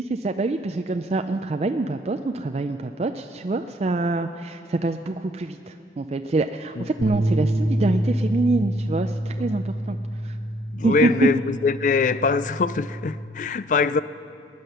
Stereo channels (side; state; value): both; normal; correlation 0.62